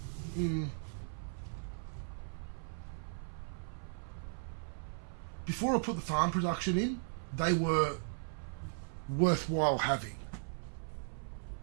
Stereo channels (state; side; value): silent; left; 53 dB below the other